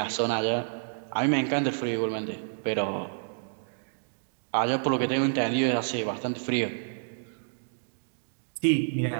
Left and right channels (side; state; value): left; silent; digital silence